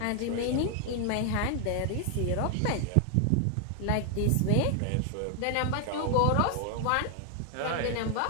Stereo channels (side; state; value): both; different; correlation 0.00